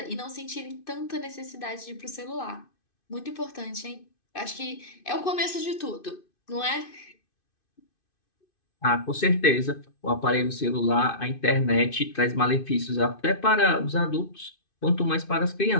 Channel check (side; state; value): right; late; 2.5 ms